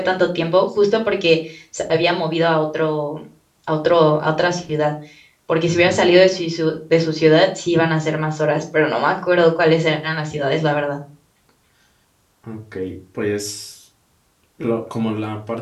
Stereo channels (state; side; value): identical; both; correlation 1.00